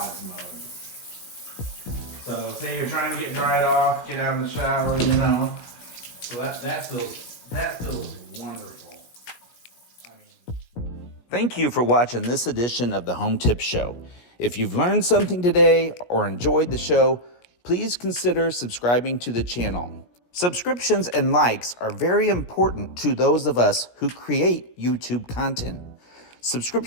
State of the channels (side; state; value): right; late; 17 ms